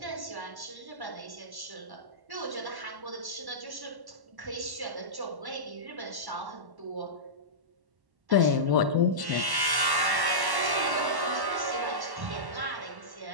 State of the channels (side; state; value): left; late; 1.1 ms